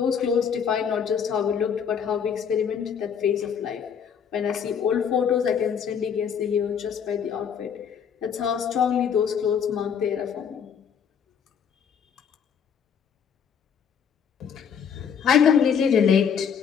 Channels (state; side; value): quieter; right; 7.4 dB